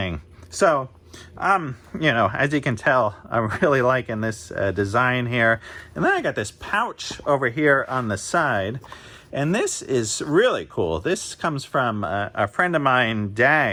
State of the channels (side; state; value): both; identical; correlation 1.00